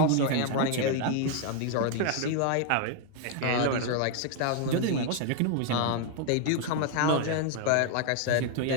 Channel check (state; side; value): different; both; correlation 0.00